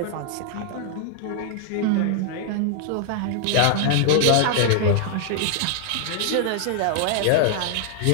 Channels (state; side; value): different; both; correlation 0.00